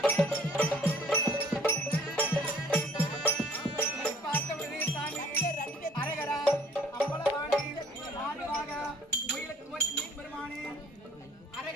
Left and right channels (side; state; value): both; normal; correlation 0.57